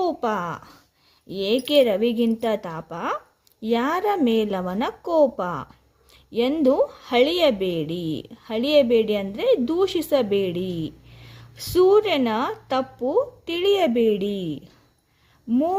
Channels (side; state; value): both; identical; correlation 1.00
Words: ಏಕೆ ರವಿಗಿಂತ ತಾಪ, ಯಾರ ಮೇಲವನ ಕೋಪ ಎಂದು ಹಳಿಯಬೇಡಿ. ಹಳಿಯಬೇಡಿ ಅಂದರೆ ದೂಷಿಸಬೇಡಿ. ಸೂರ್ಯನ ತಪ್ಪು ತಿಳಿಯಬೇಡಿ.